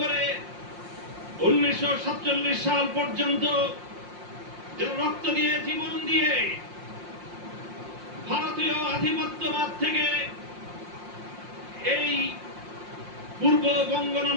1947 সাল পর্যন্ত যারা রক্ত দিয়ে, জীবন দিয়ে ভারতীয় আধিপত্যবাদ থেকে এই পূর্ববঙ্গ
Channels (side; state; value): left; late; 5.6 ms